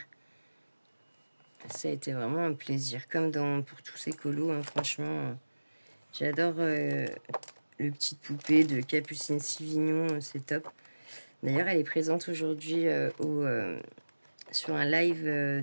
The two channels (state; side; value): inverted; both; correlation -1.00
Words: Ça a été vraiment un plaisir. Comme pour tous ces colos, hein, franchement, j'adore le petite poupée de Capucine Sivignon, c'est top. D'ailleurs, elle est présente aujourd'hui sur un live